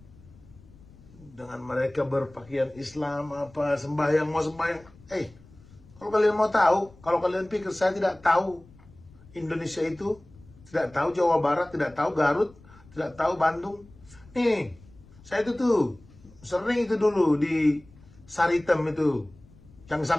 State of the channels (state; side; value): noise; left; rumble, 24 dB below the sound